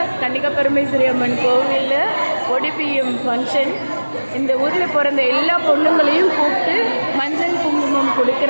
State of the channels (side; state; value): both; inverted; correlation -1.00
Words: கன்னிகா பரமேஸ்வரி அம்மன் கோவிலில் ஒடிபிஎம் ஃபங்க்ஷன். இந்த ஊரில் பிறந்த எல்லா பொண்ணுங்களையும் கூப்பிட்டு மஞ்சள் குங்குமம்